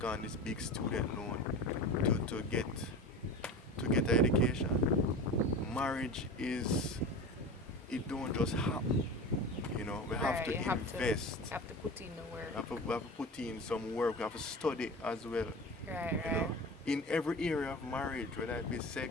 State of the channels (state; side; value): normal; both; correlation 0.32